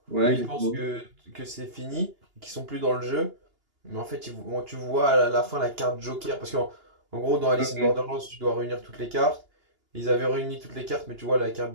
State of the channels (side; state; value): left; late; 2.9 ms